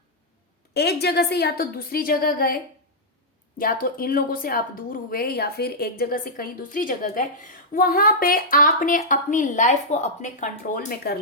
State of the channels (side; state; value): both; normal; correlation -0.09